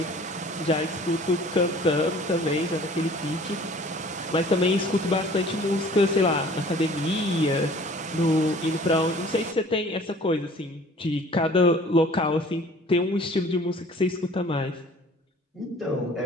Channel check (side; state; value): both; normal; correlation 0.50